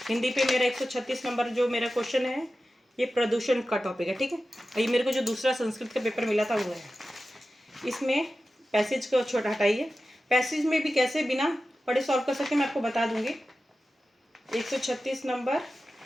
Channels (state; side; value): normal; both; correlation 0.94